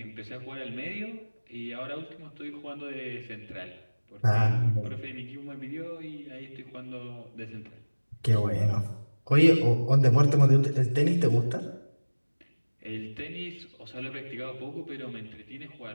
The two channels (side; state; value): both; inverted; correlation -1.00